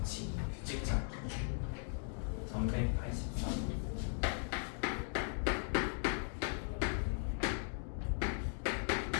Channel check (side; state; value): right; silent; 52 dB below the other